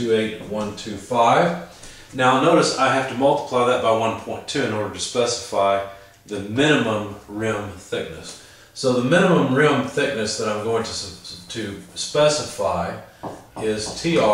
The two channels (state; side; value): identical; both; correlation 1.00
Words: Now notice I have to multiply that by 1.2 in order to specify the minimum rim thickness. So the minimum rim thickness that I'm going to specify is